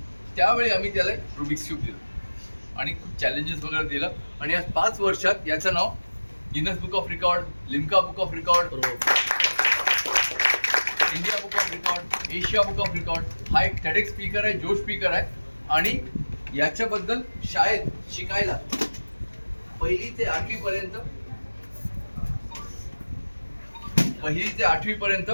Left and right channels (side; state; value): both; inverted; correlation -1.00